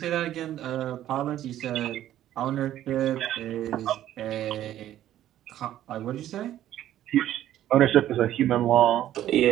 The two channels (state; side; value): quieter; left; 12.4 dB